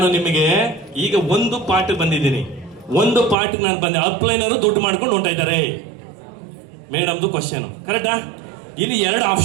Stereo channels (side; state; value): left; drops out; at 3.4 s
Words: ನಿಮಗೆ ಈಗ ಒಂದು ಪಾಠ ಬಂದಿದ್ದೀನಿ. ಒಂದು ಪಾಠ ನಾನು ಬಂದೆ. ಅಪ್ಲೈನರು ದುಡ್ಡು ಮಾಡ್ಕೊಂಡು ಹೊಂಟ ಇದ್ದಾರೆ ಮೇಡಮ್ದು ಕ್ವಶನ್. ಕರೆಕ್ಟಾ? ಇಲ್ಲಿ 2